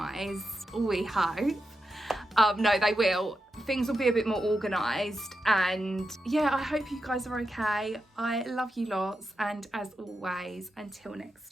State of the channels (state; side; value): normal; both; correlation 0.88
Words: we hope. No, they will. Things will be a bit more organised, and yeah, I hope you guys are okay. I love you lots, and as always, until next